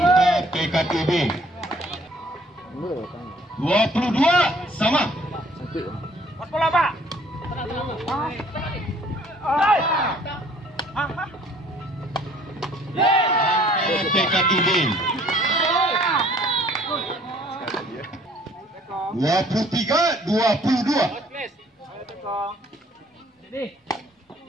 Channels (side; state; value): both; normal; correlation 0.58